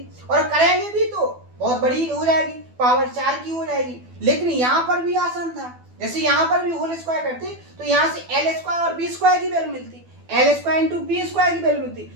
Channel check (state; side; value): late; left; 12 ms